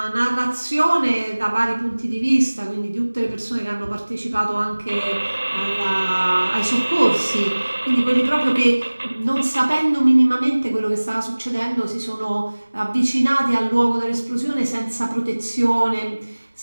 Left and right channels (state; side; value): inverted; both; correlation -1.00